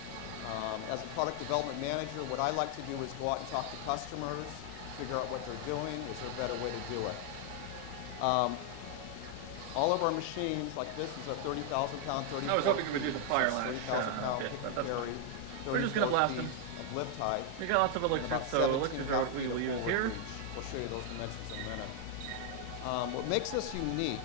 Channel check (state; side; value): different; both; correlation 0.00